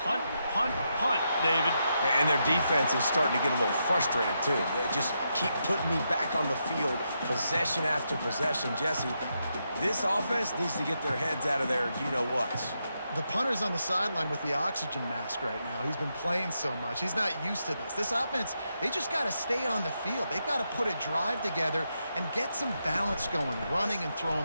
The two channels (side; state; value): both; inverted; correlation -0.83